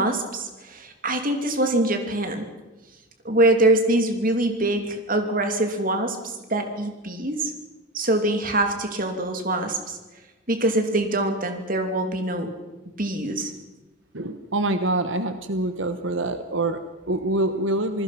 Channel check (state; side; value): normal; both; correlation 0.20